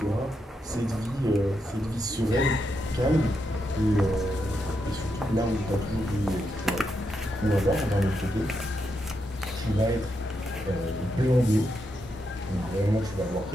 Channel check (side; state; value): both; normal; correlation 0.83